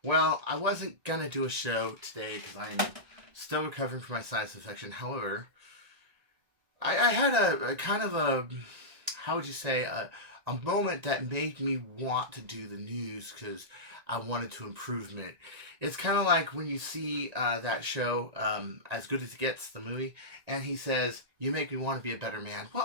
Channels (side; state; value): left; late; 1.9 ms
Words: well, I wasn't going to do a show today because I'm still recovering from my sinus infection. However, I had a kind of a, how would you say, a moment that made me want to do the news because I wanted to improvement. It's kind of like when you see that show, As Good as It Gets, the movie, and he says, "You make me want to be a better man." Well,